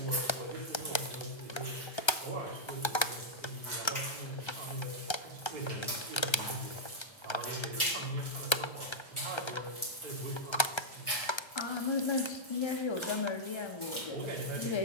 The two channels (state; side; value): late; right; 1.3 ms